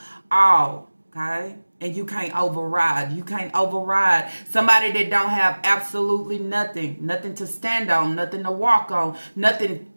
all. Okay? And you can't override. You can't override somebody that don't have absolutely nothing. Nothing to stand on. Nothing to walk on. Nothing.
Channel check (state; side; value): inverted; both; correlation -1.00